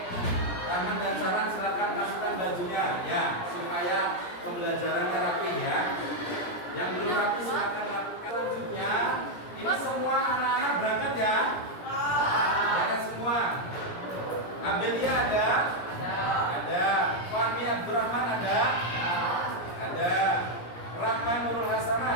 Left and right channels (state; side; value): late; right; 17 ms